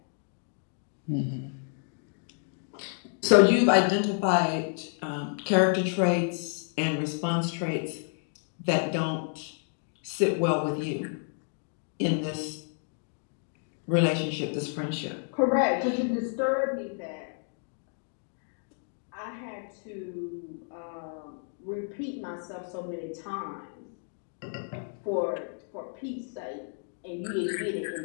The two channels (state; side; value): silent; right; 56 dB below the other